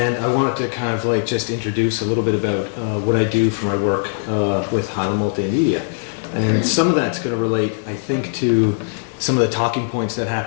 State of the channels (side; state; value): right; silent; 66 dB below the other